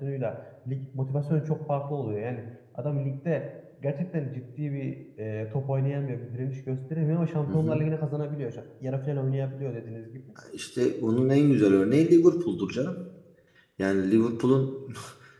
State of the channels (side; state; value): both; identical; correlation 1.00